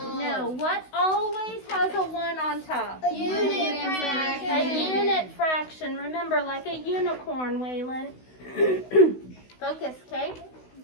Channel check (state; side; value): late; right; 16 ms